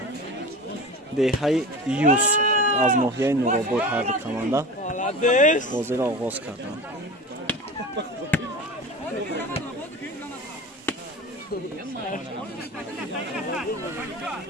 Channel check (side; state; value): both; normal; correlation 0.33